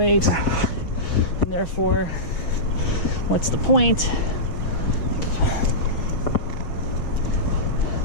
and therefore what's the point?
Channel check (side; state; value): right; late; 6.1 ms